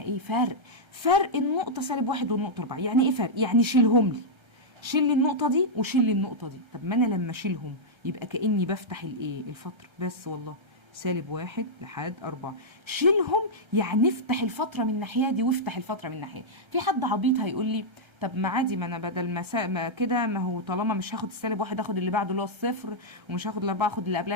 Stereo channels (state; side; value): late; left; 1.3 ms